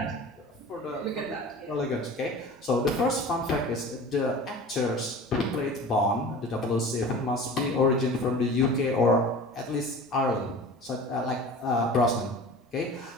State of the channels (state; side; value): normal; both; correlation 0.38